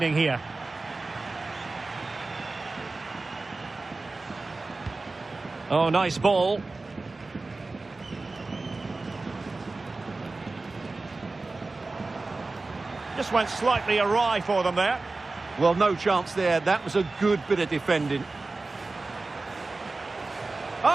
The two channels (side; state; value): left; quieter; 3.4 dB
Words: here. Oh, nice ball. Just went slightly awry for them there. Well, no chance there. That was a good bit of defending.